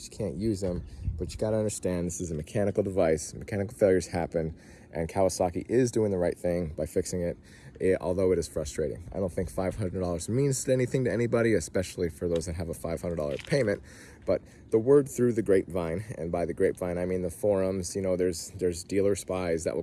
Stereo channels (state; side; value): identical; both; correlation 1.00